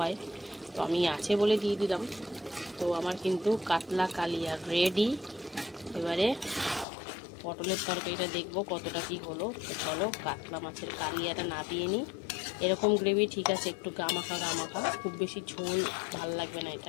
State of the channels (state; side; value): drops out; right; at 6.9 s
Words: তো আমি আছে বলে দিয়ে দিলাম। তো আমার কিন্তু কাতলা কালিয়া রেডি। এবারে পটলের তরকারিটা দেখবো কতটা কি হলো। তো চলো কাতলা মাছের কালিয়াটা নাবিয়ে নিই। এরকম গ্রেভি ঠিক আছে, একটু গামাখা, খুব বেশি ঝোল ভাল লাগবে না